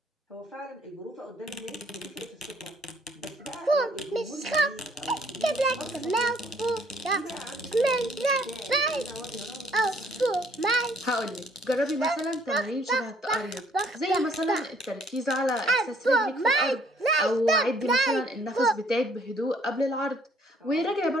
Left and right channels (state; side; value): normal; both; correlation 0.62